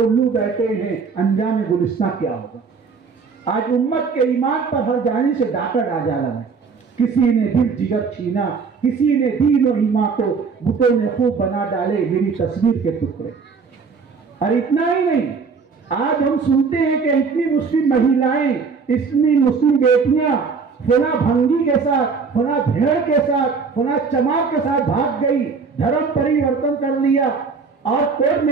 بیٹھے ہیں, انجام گلستان کیا ہوگا؟ آج امت کے ایمان پر ہر جانب سے ڈاکہ ڈالا ہے. کسی نے دل جگر چھینا, کسی نے دین و ایمان کو بتوں نے خوب بنا ڈالے میری تصویر کے ٹکڑے. اور اتنا ہی نہیں, آج ہم سنتے ہیں کہ اتنی مسلم مہیلائیں, اتنی مسلم بیٹیاں فلاں بھنگی کے ساتھ, فلاں بھیڑ کے ساتھ, فلاں چمار کے ساتھ بھاگ گئی, دھرم پریورتن کر لیا اور کورٹ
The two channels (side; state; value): left; quieter; 5.2 dB